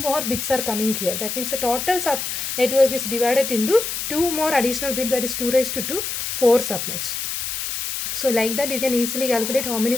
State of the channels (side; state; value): left; noise; hiss, 4 dB below the sound